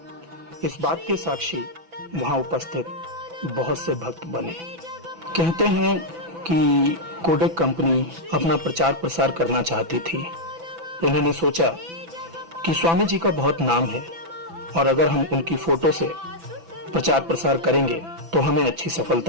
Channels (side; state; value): left; late; 6.0 ms